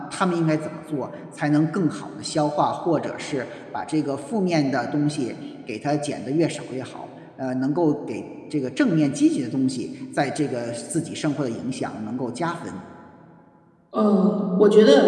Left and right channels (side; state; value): both; identical; correlation 1.00